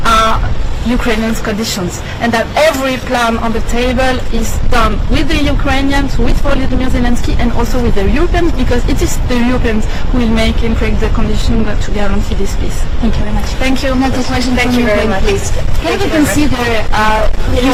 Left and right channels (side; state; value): both; identical; correlation 1.00